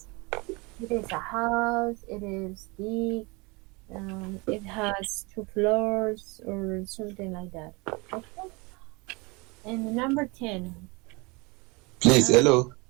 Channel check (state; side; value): quieter; left; 27.0 dB